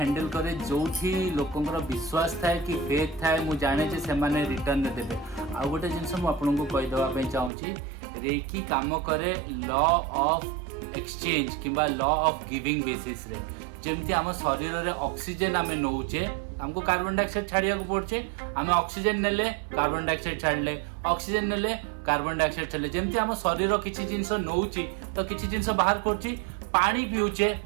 करे जोठी लोकंकर विश्वास थाए कि फेथ थाए मु जाने जे से माने रिटर्न दे देबे आ गोटे जिंस मु आपन को कहि देबा पे चाहूची रेकी काम करे लॉ ऑफ एक्सचेंज किबा लॉ ऑफ गिविंग बेसिस रे जेमति हम शरीर रे ऑक्सीजन आमे नौचे हमको कार्बन डाइऑक्साइड छाड़िया को पड़छे हमें ऑक्सीजन नेले कार्बन डाइऑक्साइड छाड़ले ऑक्सीजन नेले कार्बन डाइऑक्साइड छाड़ले जेमति हम शरीर किछि जिंस नौची तो किछि जिंस बाहर करछि पानी पिउचे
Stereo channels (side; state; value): left; drops out; at 7.5 s